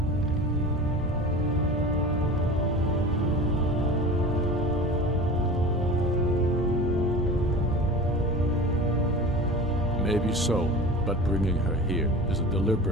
Maybe so, but bringing her here is a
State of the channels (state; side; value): normal; both; correlation 0.35